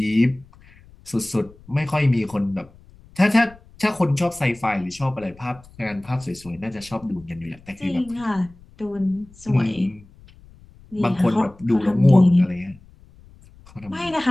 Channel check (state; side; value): noise; left; rumble, 24 dB below the sound